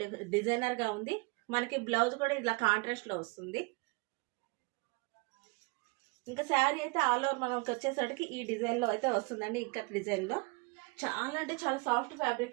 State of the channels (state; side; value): quieter; left; 28.4 dB